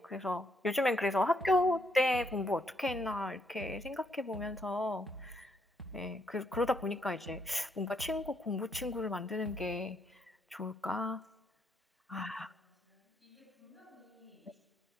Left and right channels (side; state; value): both; normal; correlation 0.74